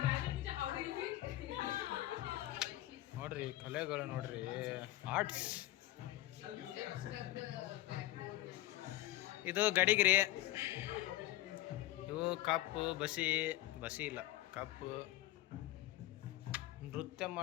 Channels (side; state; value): right; quieter; 15.9 dB